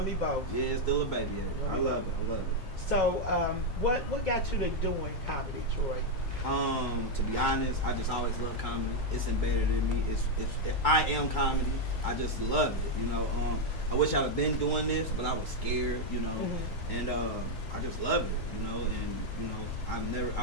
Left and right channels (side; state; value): both; normal; correlation 0.02